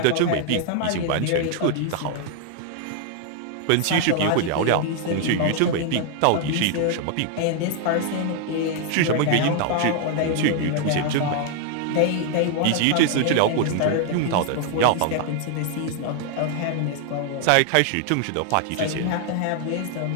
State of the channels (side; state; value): both; different; correlation 0.00